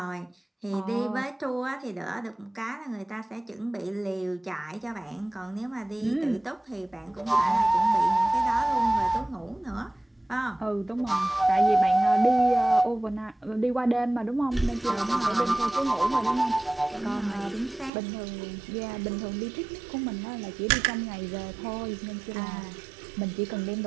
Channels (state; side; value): drops out; left; at 17.9 s